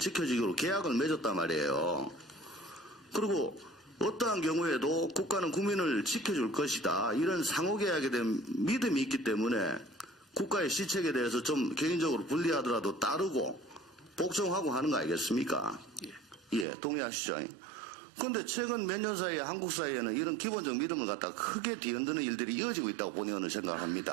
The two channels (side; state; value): left; drops out; at 16.7 s